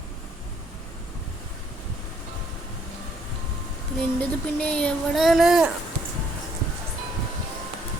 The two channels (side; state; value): both; normal; correlation 0.67